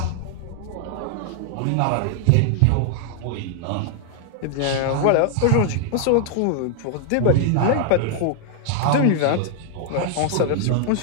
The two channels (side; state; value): both; different; correlation 0.00